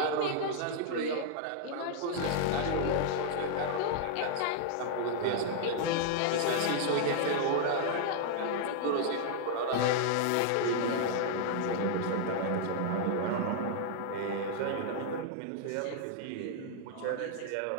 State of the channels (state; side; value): different; both; correlation -0.01